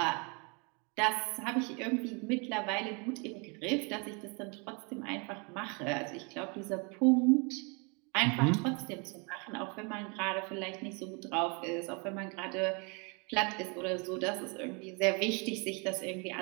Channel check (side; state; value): left; quieter; 32.5 dB